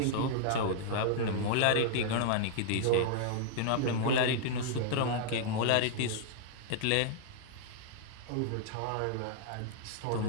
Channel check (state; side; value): different; both; correlation -0.01